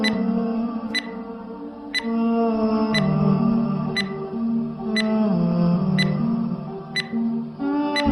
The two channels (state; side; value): identical; both; correlation 1.00